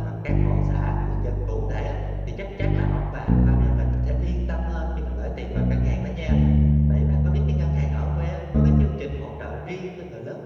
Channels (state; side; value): identical; both; correlation 1.00